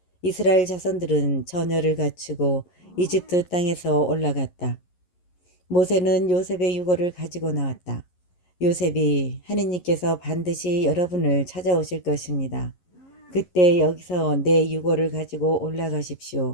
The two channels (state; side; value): late; right; 11 ms